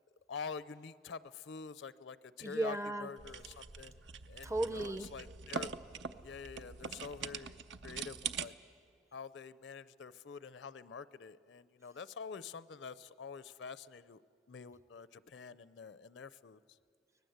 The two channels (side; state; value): both; normal; correlation 0.41